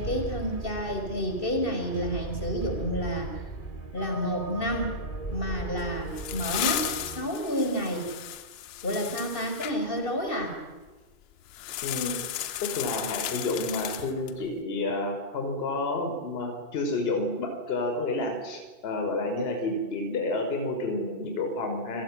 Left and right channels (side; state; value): right; late; 2.9 ms